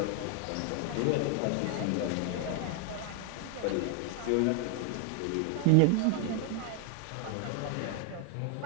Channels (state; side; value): different; both; correlation 0.00